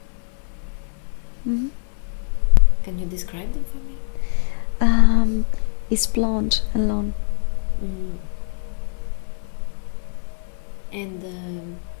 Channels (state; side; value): silent; right; digital silence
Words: Can you describe them for me? It's blonde and long. And